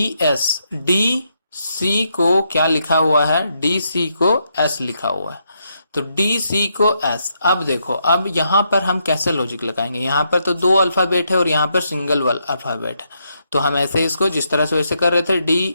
डी सी को क्या लिखा हुआ है, डी सी को S लिखा हुआ है। तो डी सी को S। अब देखो, अब यहाँ पर हम कैसे लॉजिक लगाएंगे, यहाँ पर तो 2 अल्फाबेट है और यहाँ पर सिंगल अल्फाबेट है। तो हम ऐसे इसको जिस तरह से वैसे कर रहे थे,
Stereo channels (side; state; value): both; inverted; correlation -0.79